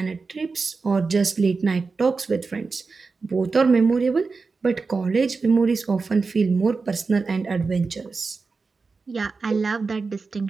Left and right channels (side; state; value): left; quieter; 4.4 dB